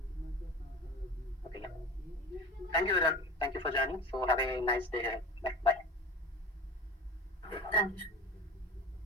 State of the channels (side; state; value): both; normal; correlation 0.35